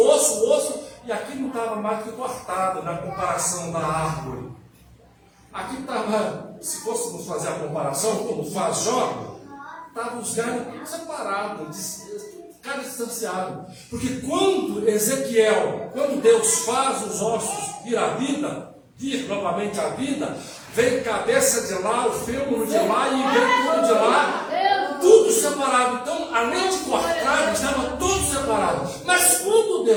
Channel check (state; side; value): identical; both; correlation 1.00